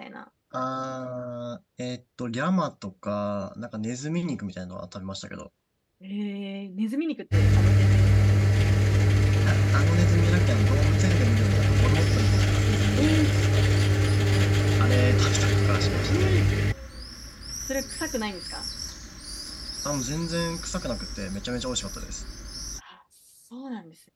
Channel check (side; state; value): both; identical; correlation 1.00